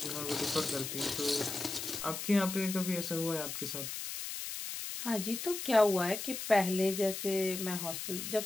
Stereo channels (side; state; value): left; noise; hiss, 6 dB below the sound